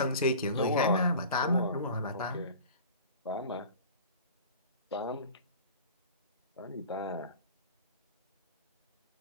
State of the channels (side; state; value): both; inverted; correlation -0.39